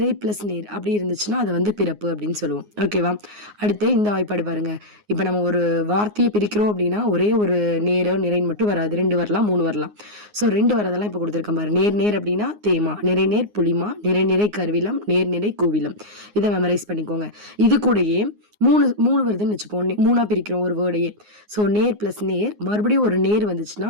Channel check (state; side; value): late; left; 9.6 ms